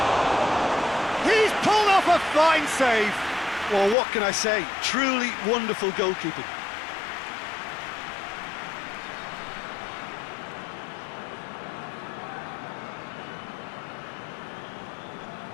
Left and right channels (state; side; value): drops out; right; at 4.0 s